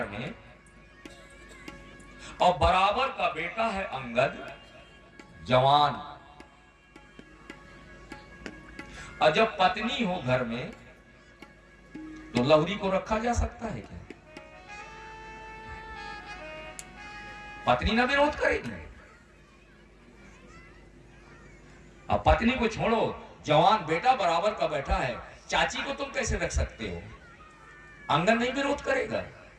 में और बराबर का बेटा है अंगद जवान। और जब पत्नी हो घर में तो लहुरी को रखा जा सकता है क्या? पत्नी ना विरोध करेगी। अब पत्नी को छोड़ो, जवान बेटा बराबर का बैठा है, चाची को तुम कैसे रख सकते हो? अंगद नहीं विरोध करेगा,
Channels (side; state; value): both; identical; correlation 1.00